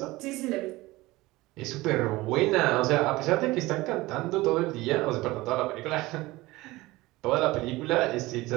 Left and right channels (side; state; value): left; quieter; 19.9 dB